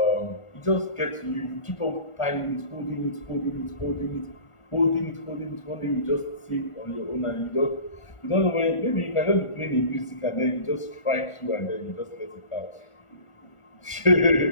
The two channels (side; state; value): right; late; 1.5 ms